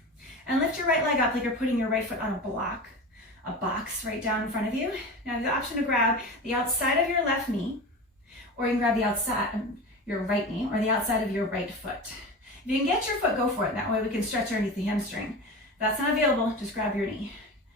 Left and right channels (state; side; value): normal; both; correlation 0.29